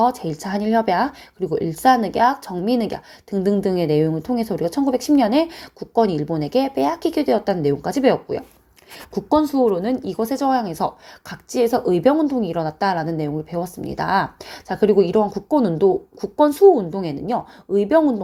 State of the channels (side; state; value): both; identical; correlation 1.00